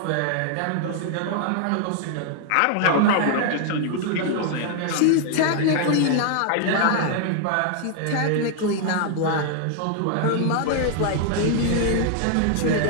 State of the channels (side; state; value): both; different; correlation 0.00